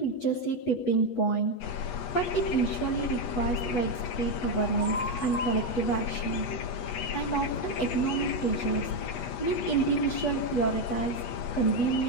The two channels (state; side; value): late; right; 8.2 ms